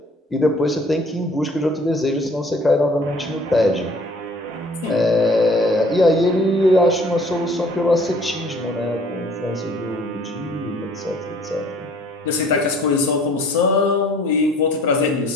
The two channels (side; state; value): both; normal; correlation 0.55